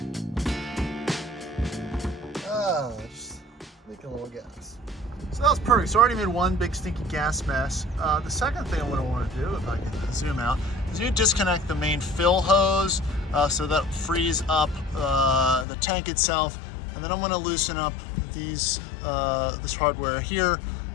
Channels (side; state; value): right; drops out; at 15.7 s